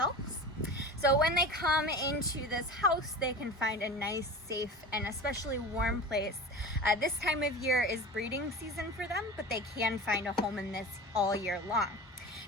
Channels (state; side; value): normal; both; correlation 0.33